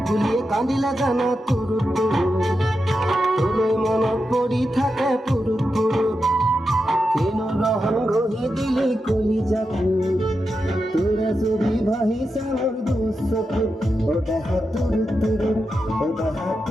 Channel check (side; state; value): both; normal; correlation 0.88